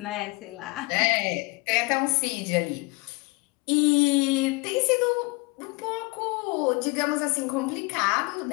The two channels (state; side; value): quieter; right; 26.8 dB